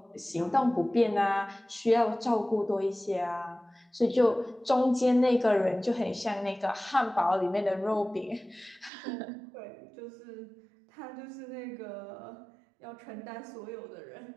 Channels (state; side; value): drops out; left; at 8.9 s